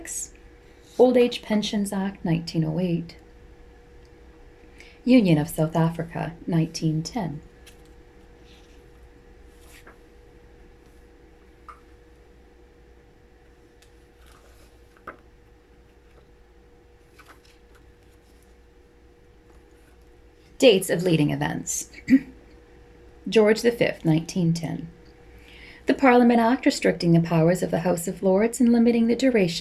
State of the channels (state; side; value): identical; both; correlation 1.00